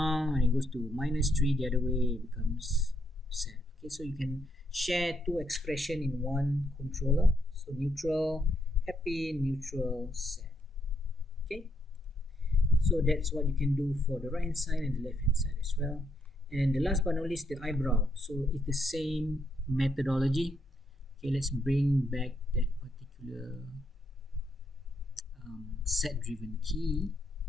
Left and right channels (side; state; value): both; normal; correlation 0.76